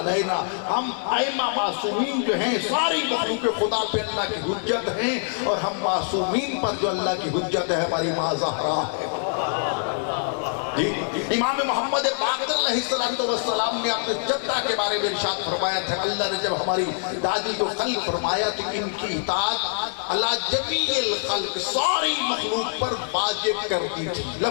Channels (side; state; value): right; silent; 60 dB below the other